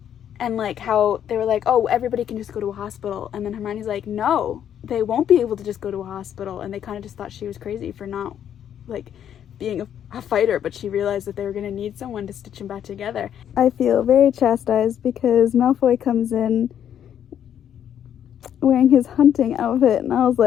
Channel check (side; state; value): right; quieter; 9.6 dB